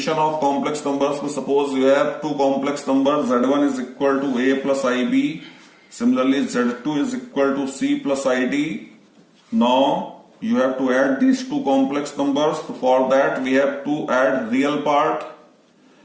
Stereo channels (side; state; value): both; identical; correlation 1.00